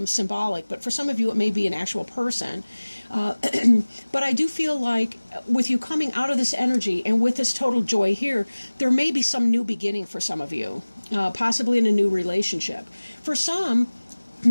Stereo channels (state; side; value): inverted; both; correlation -1.00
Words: symbolic, but for some of you it may be an actual person. But I do feel like with you coming out of this energy and with this total joy here, there may be some new beginning for some of you, possibly in a new relationship. For some,